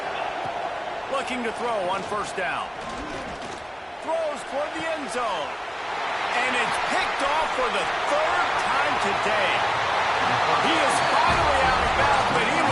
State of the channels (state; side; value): identical; both; correlation 1.00